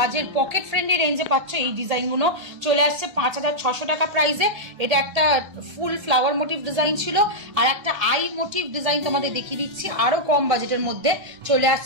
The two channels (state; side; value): late; left; 1.8 ms